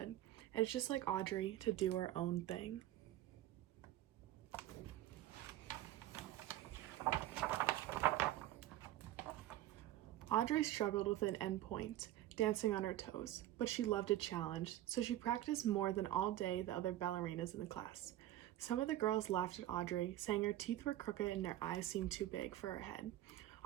And it's just like Audrey to do her own thing. Audrey struggled with an endpoint, dancing on her toes, but she loved a challenge, so she practiced more than all day the other ballerinas in the class. Some of the girls laughed at Audrey, saying her teeth were crooked and her eyes seemed too big for her head.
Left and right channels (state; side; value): quieter; left; 13.9 dB